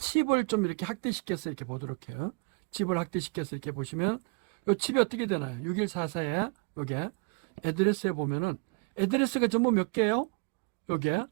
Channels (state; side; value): quieter; left; 33.8 dB